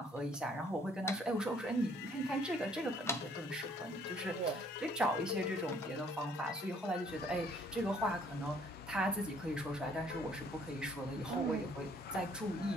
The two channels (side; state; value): both; normal; correlation 0.61